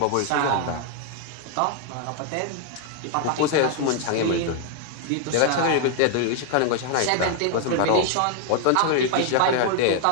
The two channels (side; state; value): both; different; correlation 0.00